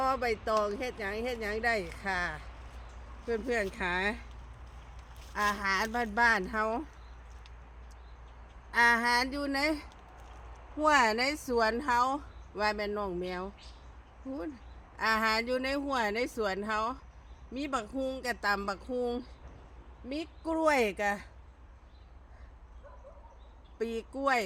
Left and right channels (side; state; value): both; identical; correlation 1.00